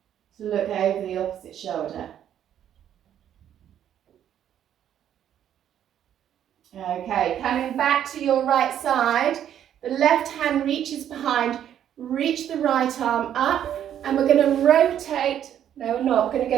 to look over the opposite shoulder. Okay, coming back to your right side, the left hand reaches behind, reach the right arm up, and we're going to rotate. No, we're not. We're going to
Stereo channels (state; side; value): quieter; left; 10.2 dB